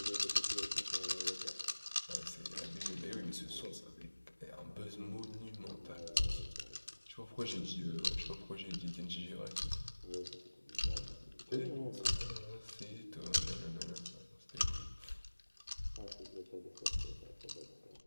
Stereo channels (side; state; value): both; inverted; correlation -1.00